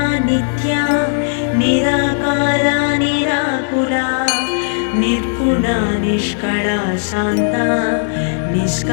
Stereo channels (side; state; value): right; silent; digital silence